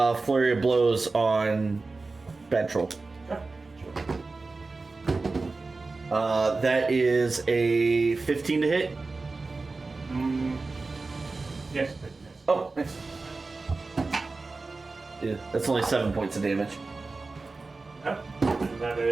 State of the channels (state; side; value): quieter; left; 3.7 dB